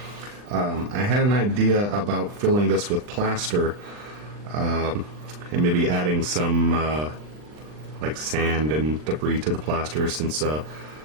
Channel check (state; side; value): late; left; 39 ms